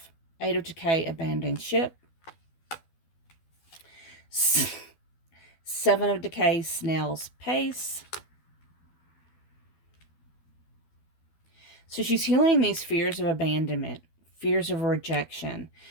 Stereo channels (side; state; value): right; late; 12 ms